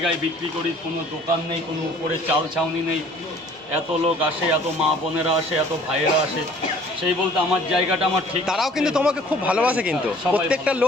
বিক্রি করি, কোনো দোকান নেই, কোনো উপরে চাল ছাউনি নেই, এত লোক আসে, এত মা বোনেরা আসে, এত ভাইয়েরা আসে, সেই বলতে আমার জায়গাটা আমার ঠিক। তারাও কিন্তু তোমাকে খুব ভালোবাসে, কিন্তু প্রত্যেকটা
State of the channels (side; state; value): both; normal; correlation 0.53